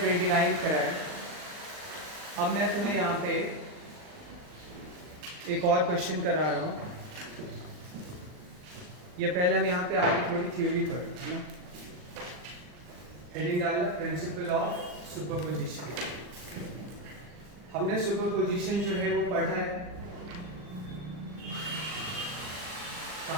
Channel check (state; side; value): late; left; 40 ms